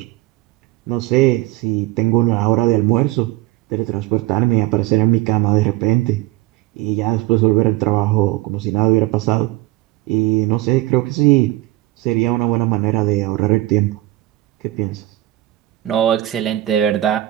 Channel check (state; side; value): quieter; left; 17.0 dB